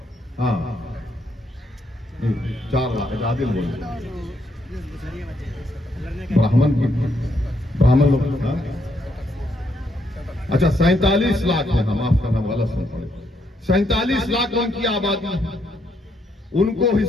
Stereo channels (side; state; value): both; normal; correlation 0.75